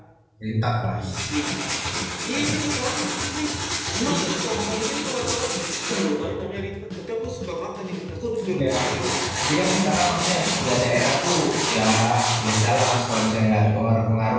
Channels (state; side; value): identical; both; correlation 1.00